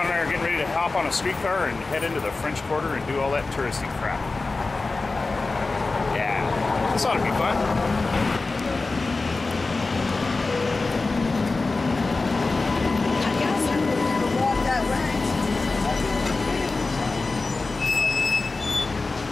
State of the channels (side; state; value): right; quieter; 3.6 dB